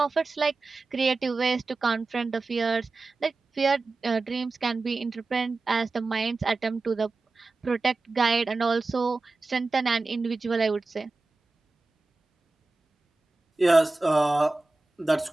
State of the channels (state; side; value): quieter; left; 3.4 dB